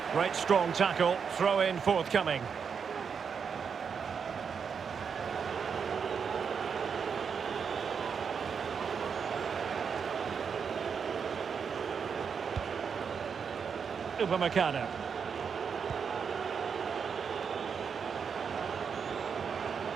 Great strong tackle, throw in forthcoming. Upamecano.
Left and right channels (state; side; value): quieter; left; 6.4 dB